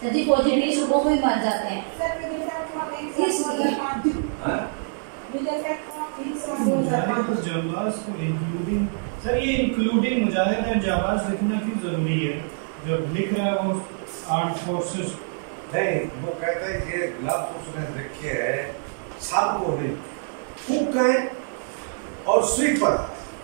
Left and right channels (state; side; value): silent; left; digital silence